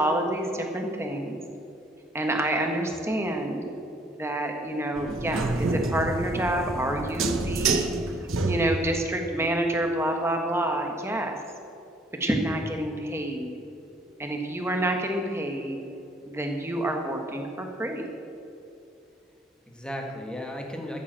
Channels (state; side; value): normal; both; correlation 0.62